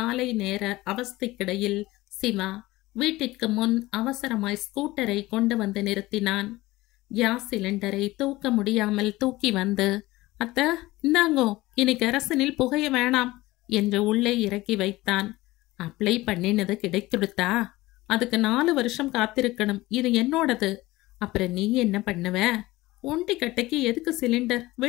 நேர அவஸ்தைக்கிடையில் சிவா வீட்டிற்கு முன் அவசரமாய் ஸ்கூட்டரை கொண்டு வந்து நிறுத்தினான். கேஸ் சிலிண்டரை தூக்க முடியாமல் தூக்கி வந்து, அத்த இந்தாங்கோ, இனி கெரசனில் புகைய வேணாம் என்று உள்ளே இறக்கி வைத்தான். அப்ளை பண்ணினது கிடைத்துடுத்தா? அதுக்கு 4 வருஷம் காத்திருக்கணும். இது என்னோடது. அப்புறம் நீ என்ன பண்ணுவ? ஒண்டி கட்டைக்கு எதுக்கு சிலிண்டர்?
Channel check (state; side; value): quieter; right; 18.9 dB